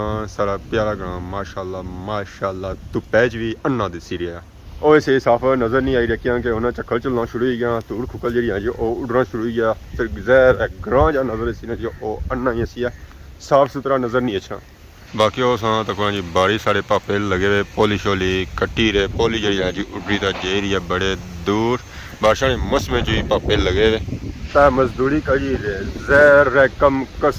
सारा प्यारा ग्रां माशाल्लाह माशाल्लाह धुप्पै च भी अन्ना दिसी रहा। वो इसे साफ नज़र नहीं आई रखियां कि उन्हें झक्खड़ चलना शुरू हो गया, धूड़ खुकल जी है जी वो उड़ना शुरू हो गया, फिर ज़ाहिर ग्रां जहाँ नज़र इसी ने जी वो अन्ना ही अस्सी है, साफ सुथरा नज़र नहीं अच्छा। बाकी वो तक जी बारिश साढ़े पापे लगे हुए, पोली शोली कट्टी रहे, पोली जी है जी उड्री तो जे रही है बड़े दूर, बारिशा ने मौसम जी पापे लगे हुए, तो मजदूरी करी रहे जहर कम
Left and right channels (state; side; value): identical; both; correlation 1.00